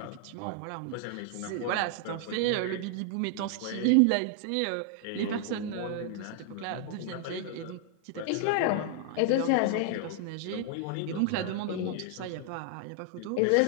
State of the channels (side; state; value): both; different; correlation 0.00